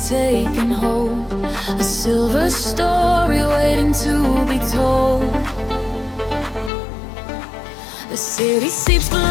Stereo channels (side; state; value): right; drops out; at 6.7 s